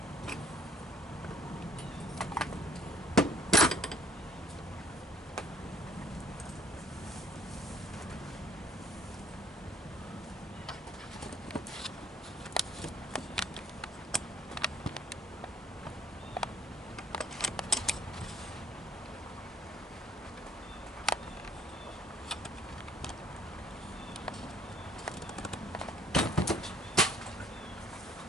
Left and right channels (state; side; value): normal; both; correlation 0.61